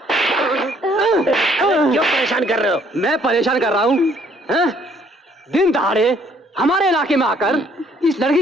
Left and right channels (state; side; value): normal; both; correlation 0.64